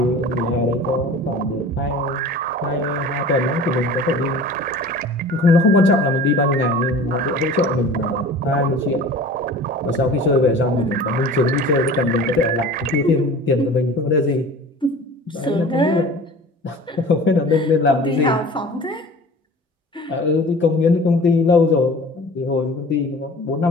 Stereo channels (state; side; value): normal; both; correlation 0.41